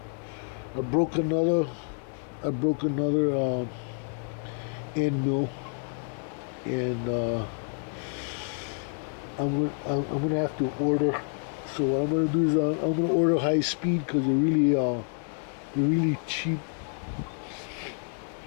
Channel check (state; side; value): silent; right; 59 dB below the other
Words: broke another end mill, and I'm gonna have to order. So what I'm gonna do is I'm gonna order high speed because they're really cheap.